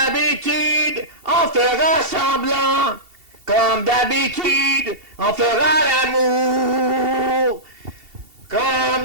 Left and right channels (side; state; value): left; late; 2.7 ms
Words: on fera semblant. Comme d'habitude, on fera l'amour. Comme